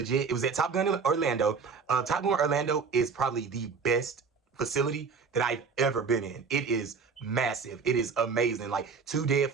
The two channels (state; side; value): quieter; left; 5.3 dB